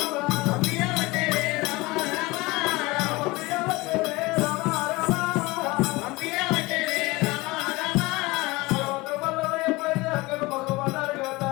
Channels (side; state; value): right; quieter; 22.0 dB